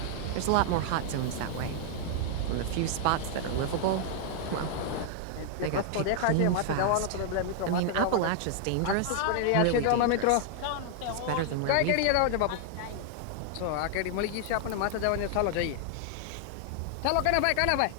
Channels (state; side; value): different; both; correlation 0.00